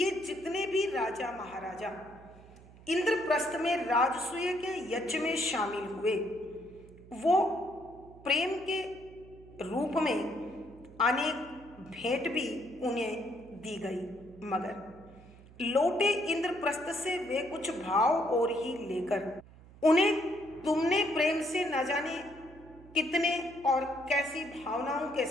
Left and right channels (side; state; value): right; noise; hum, 21 dB below the sound